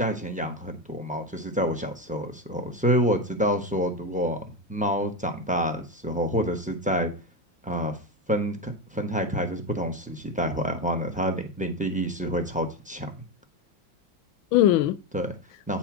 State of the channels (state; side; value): normal; both; correlation 0.14